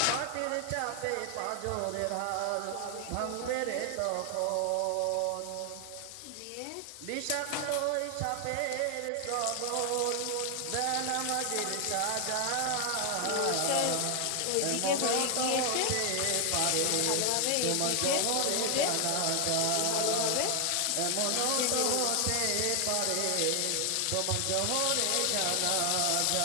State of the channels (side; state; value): both; different; correlation 0.00